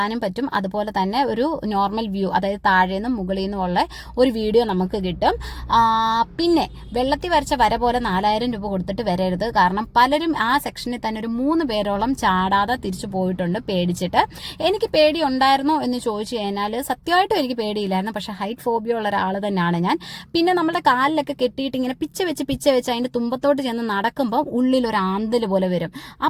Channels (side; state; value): both; identical; correlation 1.00